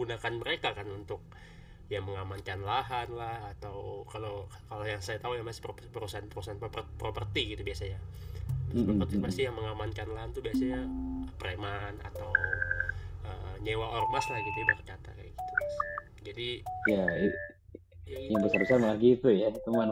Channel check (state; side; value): identical; both; correlation 1.00